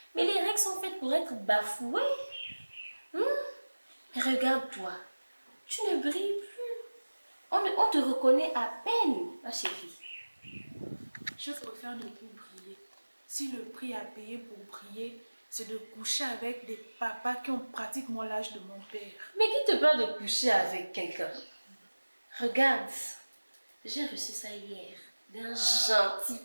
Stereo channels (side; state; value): both; inverted; correlation -1.00